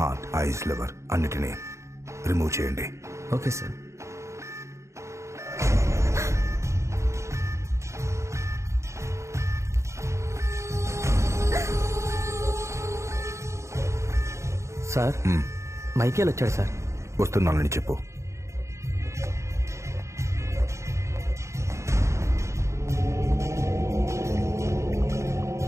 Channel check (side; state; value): left; late; 0.14 ms